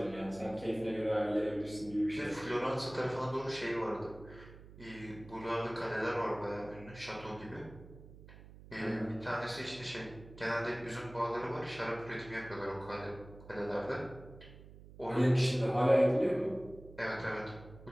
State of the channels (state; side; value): noise; right; hum, 18 dB below the sound